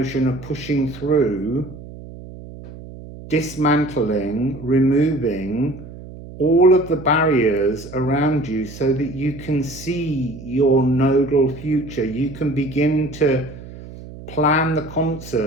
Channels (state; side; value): noise; right; hum, 15 dB below the sound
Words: of pushing through, dismantling, removing all of the barriers around you so that you can see your nodal future. You can begin to plan the